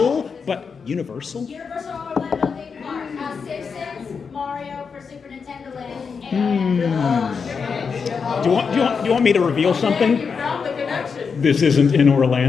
but Universal? Universal Orlando theme park. Simpsons, Mario for Super Nintendo Land, and Do you want me to reveal something? You found the connection. This isn't in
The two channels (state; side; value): quieter; right; 5.7 dB